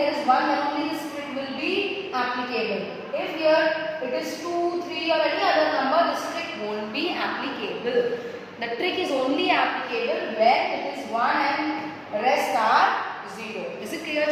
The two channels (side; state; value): both; identical; correlation 1.00